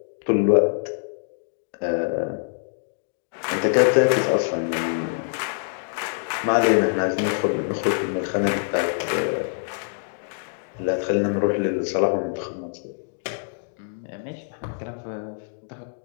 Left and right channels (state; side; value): silent; right; digital silence